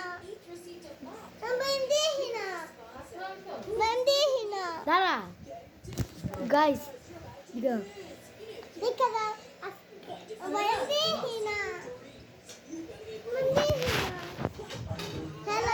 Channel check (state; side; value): identical; both; correlation 1.00